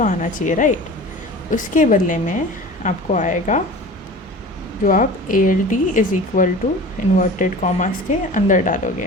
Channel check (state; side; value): normal; both; correlation 0.38